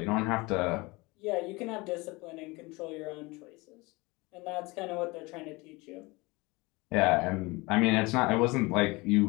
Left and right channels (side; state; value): right; quieter; 24.1 dB